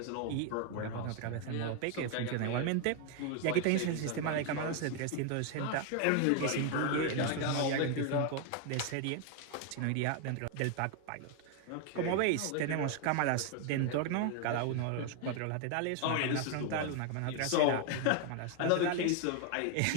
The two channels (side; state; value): both; different; correlation 0.01